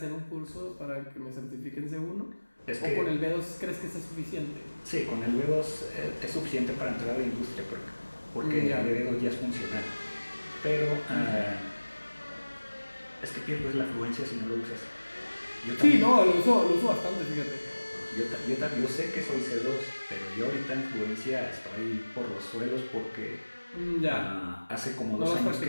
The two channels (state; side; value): inverted; both; correlation -1.00